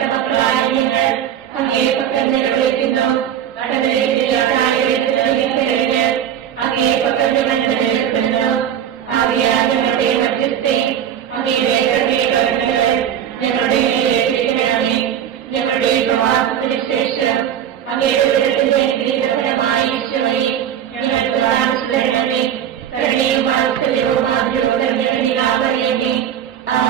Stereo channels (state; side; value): quieter; left; 9.6 dB